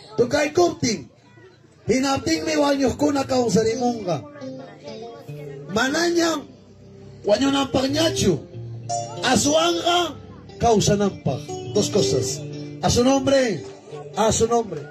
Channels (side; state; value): both; identical; correlation 1.00